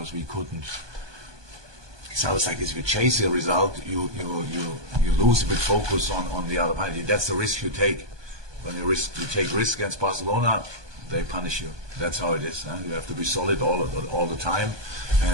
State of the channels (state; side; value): late; left; 1.2 ms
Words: we couldn't. It sounds like if you chase a result, you lose a bit focus on the other party. That's the risk you take. When you take risk against Barcelona, they punish you. That's how it is. You have to be solid all the time.